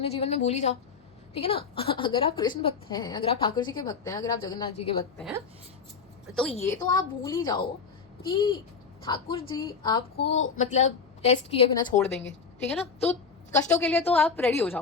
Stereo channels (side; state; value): right; quieter; 5.5 dB